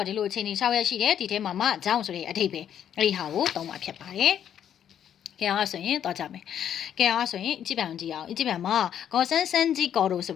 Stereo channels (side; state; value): right; quieter; 9.6 dB